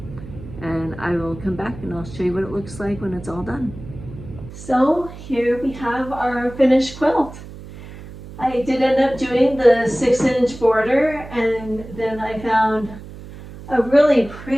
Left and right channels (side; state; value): right; noise; hum, 14 dB below the sound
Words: And I will come back and I'll show you what it looks like when it's all done. So here we have our finished quilt. I did end up doing the 6-inch border, and then I found a really